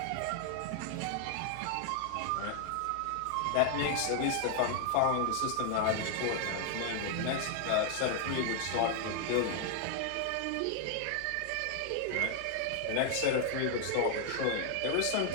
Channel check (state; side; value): different; both; correlation 0.00